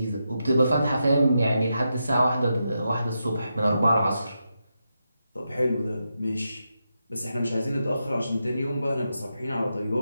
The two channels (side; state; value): both; inverted; correlation -0.86